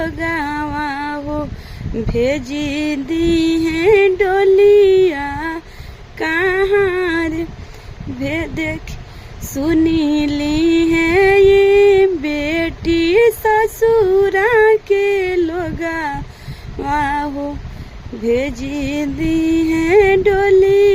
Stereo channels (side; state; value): both; identical; correlation 1.00